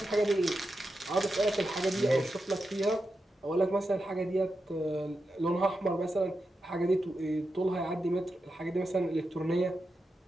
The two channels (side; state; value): both; normal; correlation 0.88